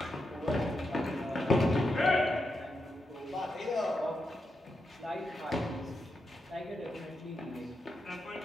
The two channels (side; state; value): both; normal; correlation 0.86